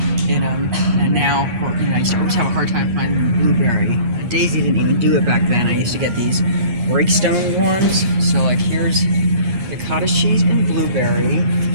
in them, and now, I used to always have a hard time finding blueberry. Daisy didn't even do it back then. I used to get these breakstone ones. So like here's the cottage cheese and blueberry.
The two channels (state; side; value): late; left; 8.5 ms